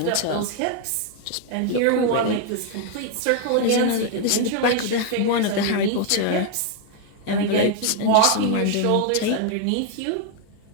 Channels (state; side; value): different; both; correlation 0.00